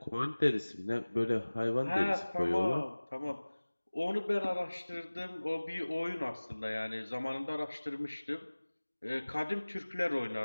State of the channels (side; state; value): both; inverted; correlation -1.00